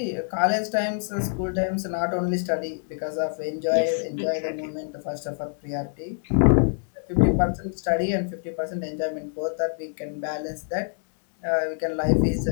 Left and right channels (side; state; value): right; silent; digital silence